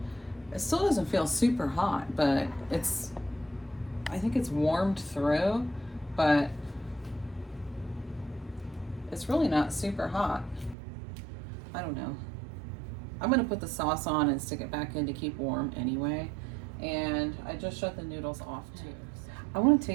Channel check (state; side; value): drops out; left; at 10.8 s